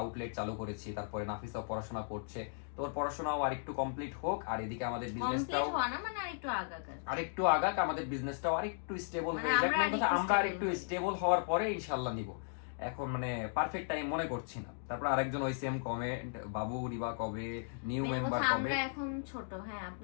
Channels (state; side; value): silent; right; digital silence